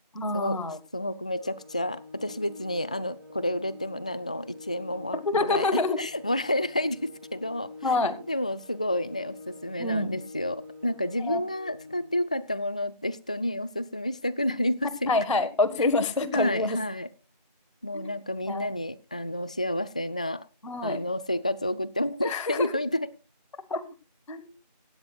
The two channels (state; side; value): inverted; both; correlation -0.48